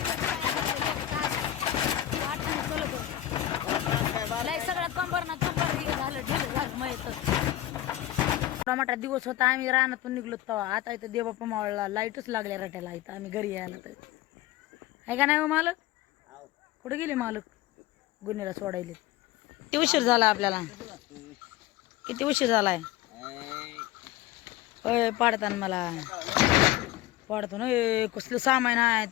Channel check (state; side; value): quieter; right; 14.1 dB